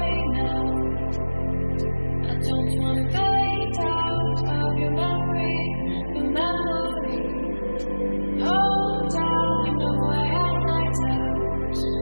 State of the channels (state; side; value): inverted; both; correlation -1.00